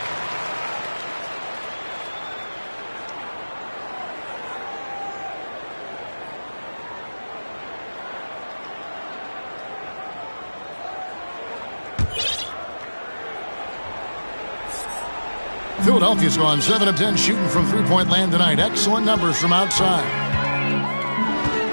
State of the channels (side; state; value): both; inverted; correlation -1.00